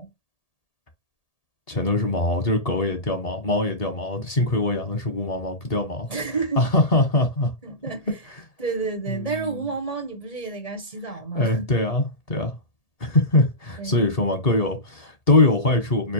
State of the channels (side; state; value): right; late; 1.8 ms